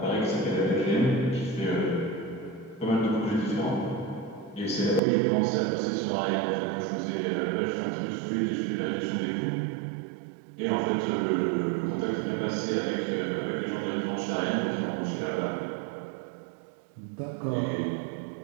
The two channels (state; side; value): drops out; left; at 5.0 s